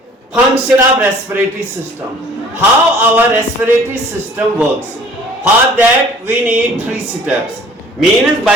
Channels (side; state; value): both; normal; correlation 0.52